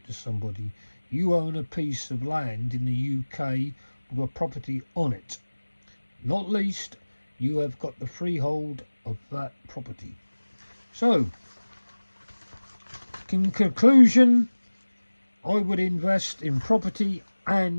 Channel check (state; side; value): inverted; both; correlation -1.00